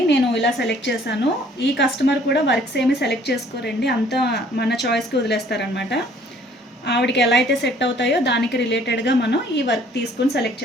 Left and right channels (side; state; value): both; normal; correlation 0.58